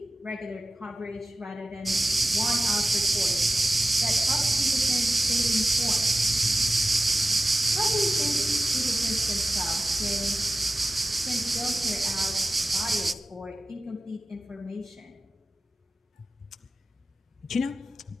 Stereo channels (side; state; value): both; normal; correlation 0.95